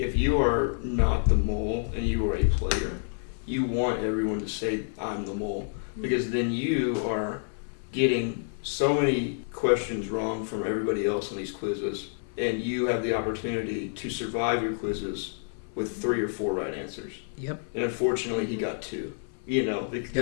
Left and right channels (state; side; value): silent; right; 59 dB below the other